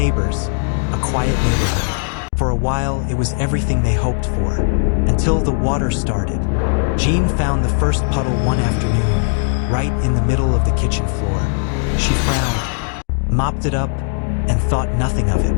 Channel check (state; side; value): silent; right; 60 dB below the other